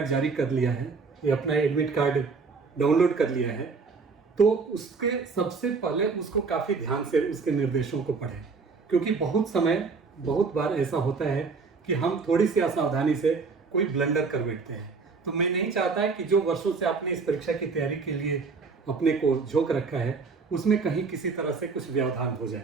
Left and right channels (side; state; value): left; quieter; 4.7 dB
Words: जारी कर लिया है या अपना एडमिट कार्ड डाउनलोड कर लिया है, तो उसके सबसे पहले उसको काफ़ी ध्यान से उसके निर्देशों को पढ़ें, क्योंकि बहुत बार ऐसा होता है कि हम थोड़ी सी असावधानी से कोई ब्लंडर कर बैठते हैं। तो मैं नहीं चाहता है कि जो वर्षों से आपने इस परीक्षा की तैयारी के लिए अपने को झोंक रखा है, उसमें कहीं किसी तरह से कुछ व्यवधान हो